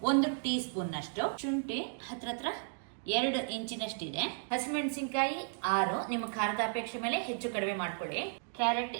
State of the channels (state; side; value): silent; left; digital silence